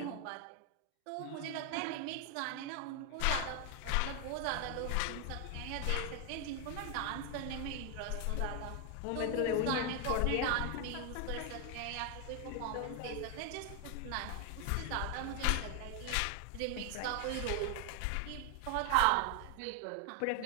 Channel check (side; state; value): both; different; correlation 0.01